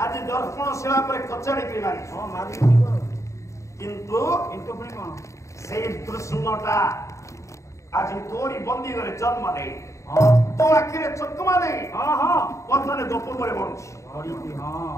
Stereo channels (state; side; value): late; right; 0.15 ms